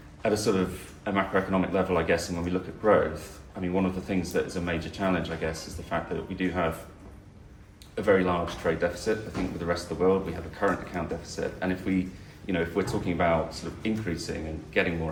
at a sort of a macroeconomic level, I guess, and when we look at growth, I mean, one of the things that is a major challenge, I guess, is the fact that we do have a very large trade deficit. I think with the rest of the world, we have a current account deficit. And if we, if we're talking about sort of increasing and getting more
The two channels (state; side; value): identical; both; correlation 1.00